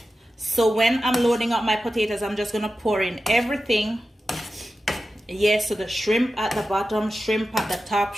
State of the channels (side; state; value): both; normal; correlation 0.93